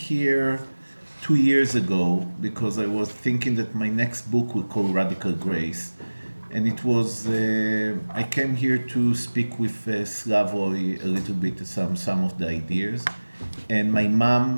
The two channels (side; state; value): both; inverted; correlation -1.00